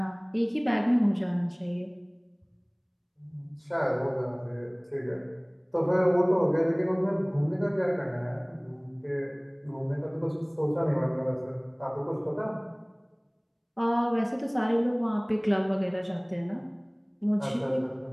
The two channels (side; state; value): both; identical; correlation 1.00